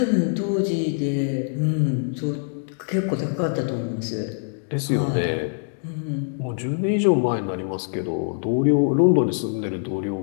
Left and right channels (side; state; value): right; silent; digital silence